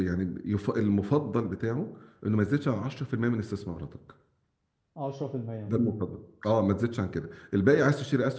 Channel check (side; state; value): both; identical; correlation 1.00